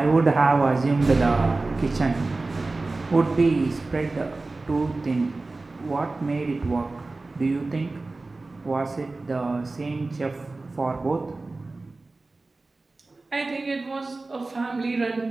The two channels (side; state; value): left; quieter; 3.4 dB